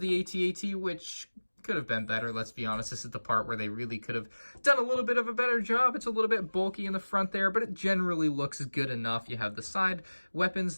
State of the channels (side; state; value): both; inverted; correlation -1.00